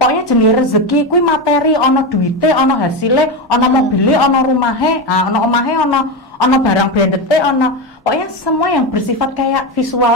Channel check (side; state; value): both; normal; correlation 0.16